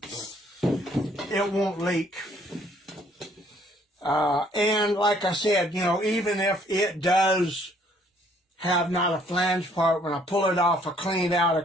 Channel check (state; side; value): normal; both; correlation 0.63